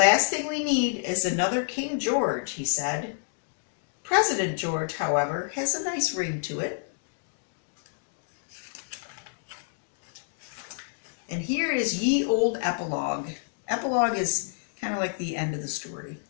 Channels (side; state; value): right; silent; digital silence